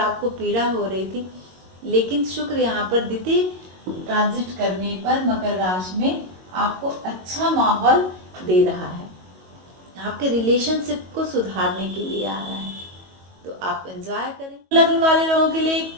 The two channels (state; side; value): late; left; 22 ms